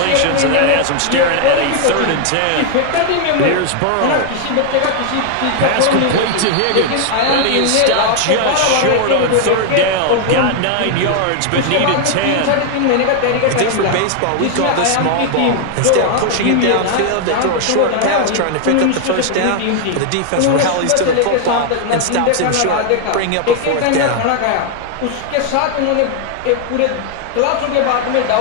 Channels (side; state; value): both; different; correlation 0.00